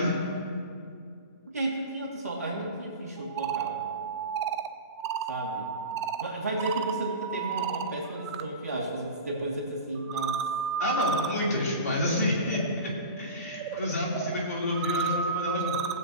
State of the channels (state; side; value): inverted; both; correlation -0.31